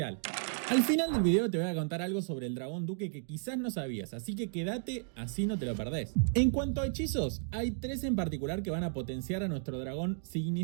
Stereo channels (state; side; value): silent; left; digital silence